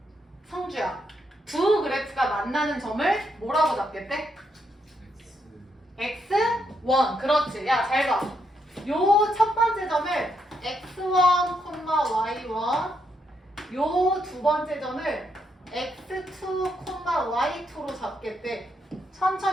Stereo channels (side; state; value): both; normal; correlation 0.78